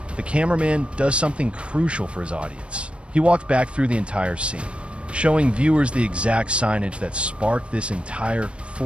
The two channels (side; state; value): left; late; 0.059 ms